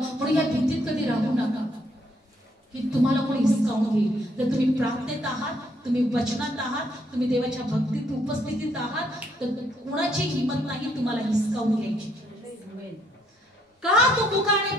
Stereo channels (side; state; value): both; normal; correlation 0.70